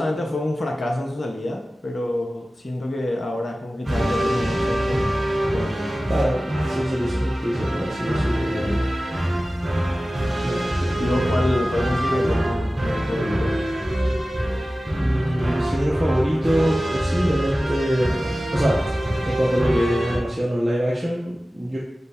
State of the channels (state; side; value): normal; both; correlation 0.96